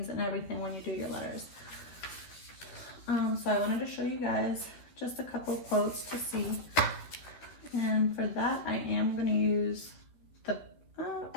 and everything when you do your letters. So I wanted to show you guys just a couple quotes to see. And for that, I am going to use the,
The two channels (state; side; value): late; right; 12 ms